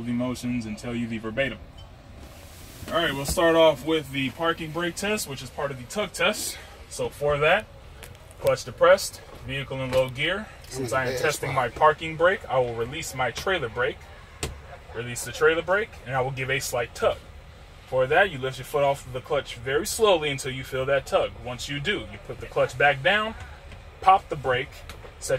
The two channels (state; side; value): identical; both; correlation 1.00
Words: the motions and tell you the verbatim. All right, we'll start off with the parking brake test, which is part of the tug test. So for that, clutch depressed, vehicle in low gear. Since I am testing my parking brake, I will release my trailer brake. Release the trailer brake, and I will give a slight tug. For that, you lift your foot off of the clutch very slowly until you feel that tug. Once you do, you put the clutch back down, pop the brake,